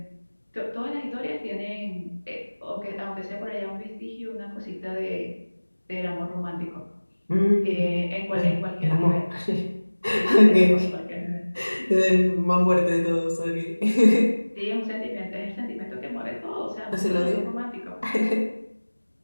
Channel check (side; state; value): both; inverted; correlation -1.00